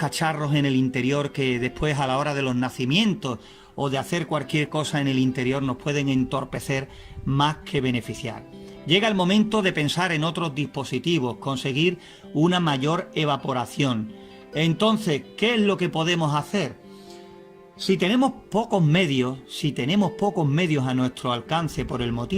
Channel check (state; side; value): identical; both; correlation 1.00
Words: en el interior que después a la hora de los nacimientos o de hacer cualquier cosa en el interior nos pueden entorpecer más que beneficiar. Llega el momento de pensar en otros dispositivos, conseguir una mayor evaporación. Entonces, ¿qué es lo que podemos hacer? Si tenemos pocos medios a nuestro alcance por el